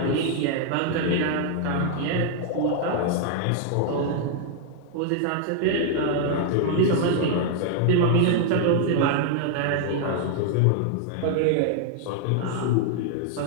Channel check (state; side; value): different; both; correlation 0.00